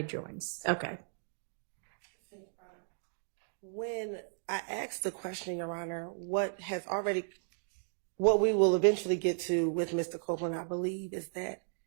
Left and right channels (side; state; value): left; silent; digital silence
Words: joins. Okay. When I asked the question, Your Honor, what we will eventually get to with Mr. Copeland, I believe, is that